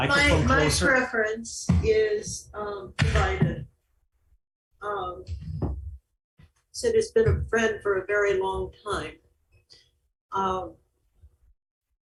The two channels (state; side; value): identical; both; correlation 1.00